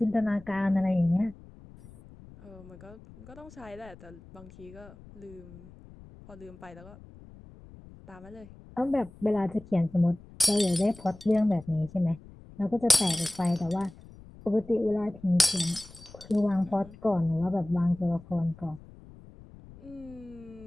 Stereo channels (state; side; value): noise; left; rumble, 20 dB below the sound